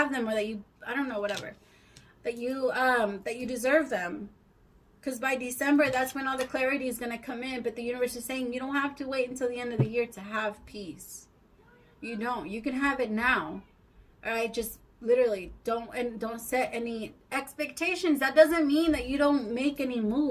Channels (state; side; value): identical; both; correlation 1.00